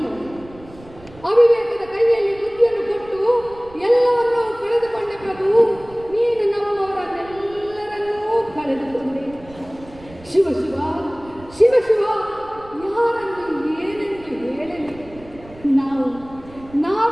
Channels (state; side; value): noise; right; rumble, 21 dB below the sound